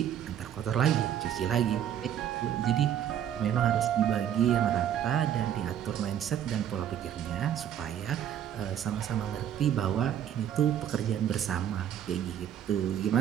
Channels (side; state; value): left; quieter; 10.0 dB